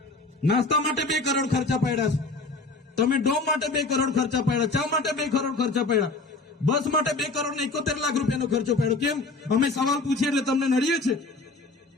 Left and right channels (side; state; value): right; quieter; 3.4 dB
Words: નાસ્તા માટે 2 કરોડ ખર્ચા પાડ્યા છે. તમે ડોમ માટે 2 કરોડ ખર્ચા પાડ્યા, ચા માટે 2 કરોડ ખર્ચા પાડ્યા, બસ માટે 2 કરોડ ને 71 લાખ રૂપિયાનો ખર્ચો પાડ્યો. કેમ? અમે સવાલ પૂછીએ એટલે તમને નડીએ છે?